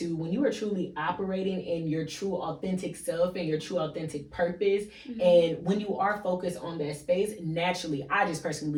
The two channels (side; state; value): both; identical; correlation 1.00